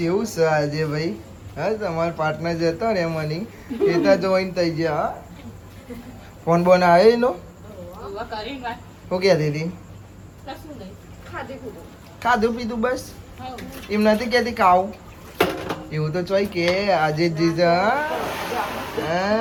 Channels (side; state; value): both; identical; correlation 1.00